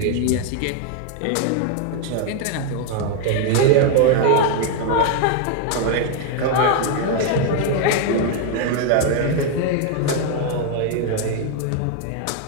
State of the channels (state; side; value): different; both; correlation 0.00